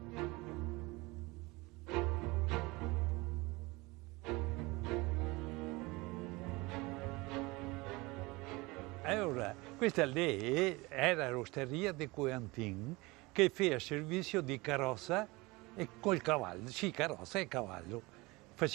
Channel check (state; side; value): quieter; left; 23.4 dB